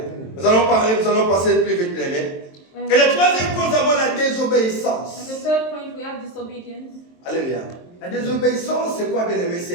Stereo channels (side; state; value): right; late; 23 ms